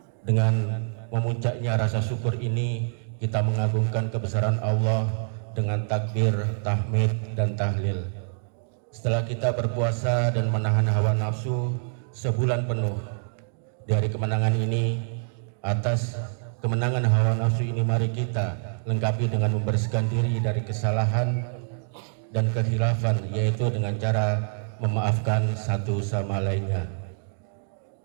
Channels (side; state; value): left; silent; digital silence